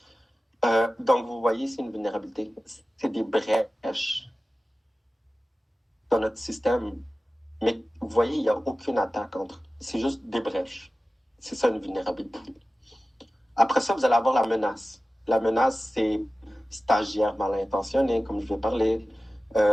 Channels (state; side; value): normal; both; correlation 0.95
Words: Donc, vous voyez, c'est une vulnérabilité. C'est des brèches dans notre système. Mais vous voyez, il n'y a aucune attaque entre. C'est juste des brèches. C'est ça une vulnérabilité. Après ça, vous allez avoir la menace. La menace, c'est stagiaire mal intentionné, comme je vais parler,